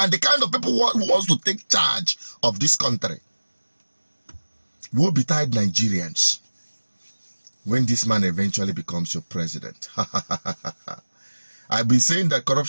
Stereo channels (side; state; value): both; inverted; correlation -1.00